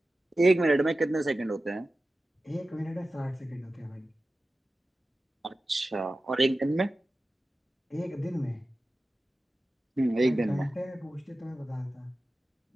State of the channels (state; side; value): normal; both; correlation 0.95